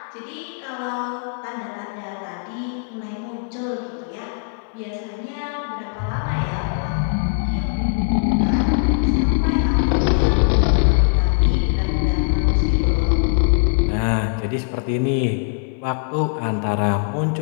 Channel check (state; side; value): silent; right; 65 dB below the other